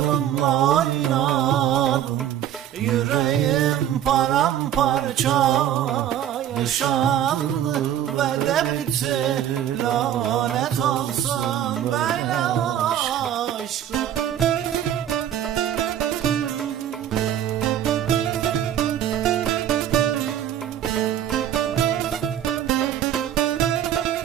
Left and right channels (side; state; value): left; quieter; 10.8 dB